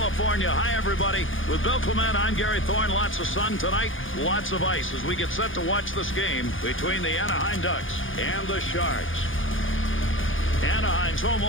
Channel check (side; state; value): right; late; 0.58 ms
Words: Hi, everybody. With Bill Clement, I'm Gary Thorne. Lots of sun tonight, lots of ice as we get set to watch this game between the Anaheim Ducks and the Sharks. Anaheim's home